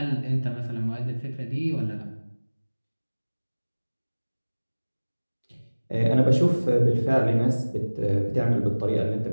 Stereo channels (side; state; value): both; inverted; correlation -1.00